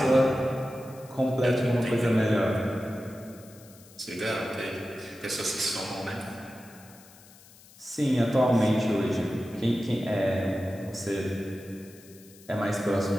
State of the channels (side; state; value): left; noise; hiss, 23 dB below the sound